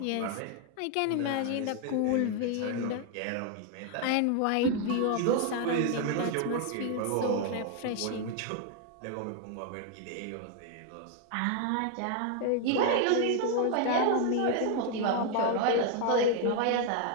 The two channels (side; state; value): both; different; correlation 0.00